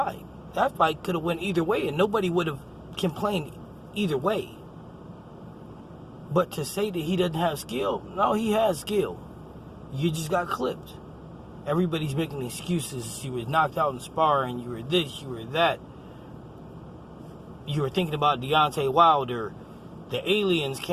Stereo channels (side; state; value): both; identical; correlation 1.00